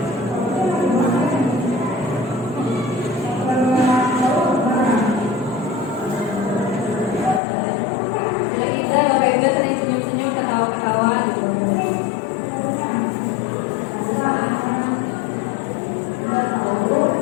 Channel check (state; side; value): drops out; right; at 7.4 s